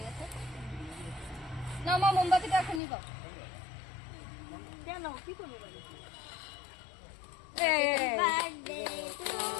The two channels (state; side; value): drops out; right; at 2.8 s